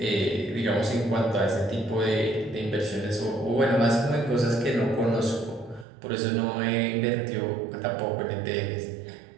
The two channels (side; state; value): left; drops out; at 5.9 s